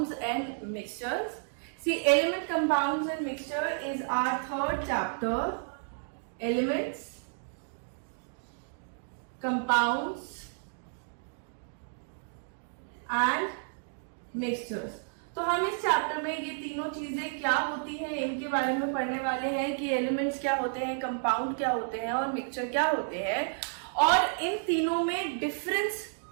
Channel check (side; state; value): left; silent; digital silence